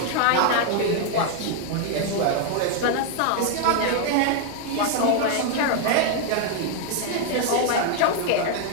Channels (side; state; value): both; different; correlation 0.00